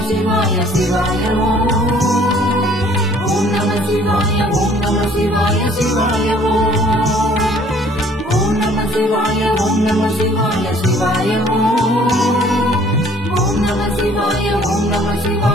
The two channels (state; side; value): normal; both; correlation 0.57